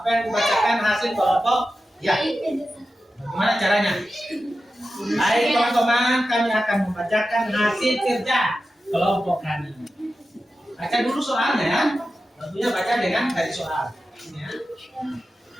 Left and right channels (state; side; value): normal; both; correlation 0.92